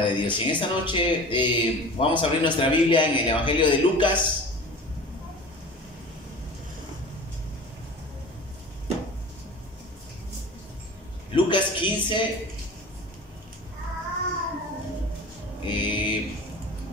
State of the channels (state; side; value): normal; both; correlation 0.38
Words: de Dios. Y en esta noche vamos a abrir nuestra Biblia en el Evangelio de Lucas. Lucas 15,